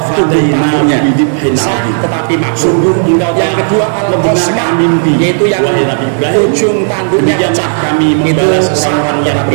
tumbuh tanduknya sah tetapi makruh. Yang kedua al-qasma, yaitu yang ujung tanduknya pecah, itu sah tetapi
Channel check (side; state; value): left; silent; 65 dB below the other